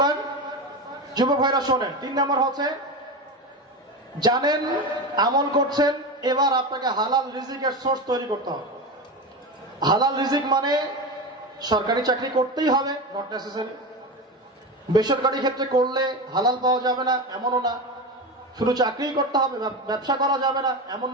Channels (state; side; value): normal; both; correlation 0.22